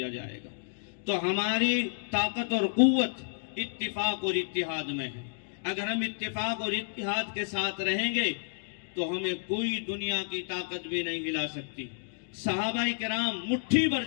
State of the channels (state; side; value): silent; right; digital silence